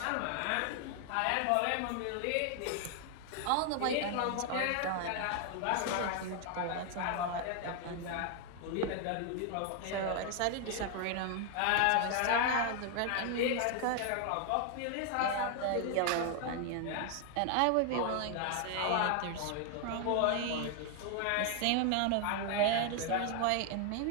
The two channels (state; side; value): different; both; correlation 0.00